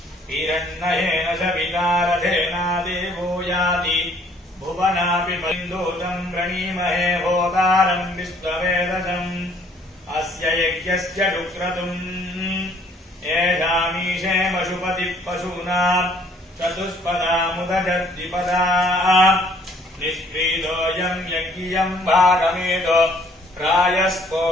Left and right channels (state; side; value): normal; both; correlation 0.60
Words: हिरण्येन सवितारथेना देवो याति भुवनापि बन्धूतं प्रणीमहे होतारं विश्ववेदसम् अस्य यज्ञस्य डुक्रतुम् येषामीशे पशुपतिः पशूनां चतुष्पदामुदजद्विपदा निष्क्रीतोऽयं यज्ञियं भागमेतो